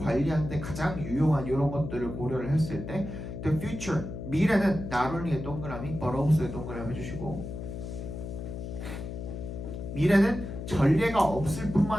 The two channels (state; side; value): noise; left; hum, 8 dB below the sound